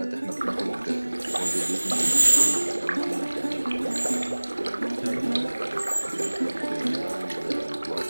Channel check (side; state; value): both; inverted; correlation -1.00